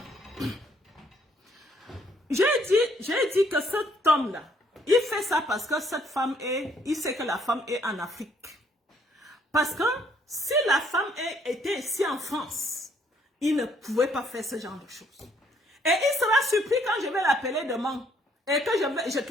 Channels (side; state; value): both; normal; correlation 0.66